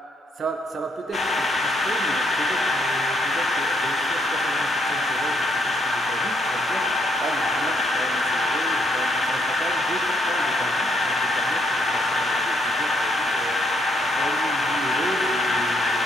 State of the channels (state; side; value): normal; both; correlation 0.72